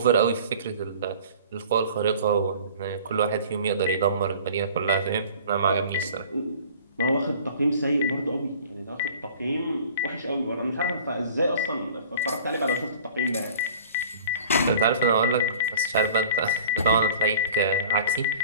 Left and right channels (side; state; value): both; inverted; correlation -0.45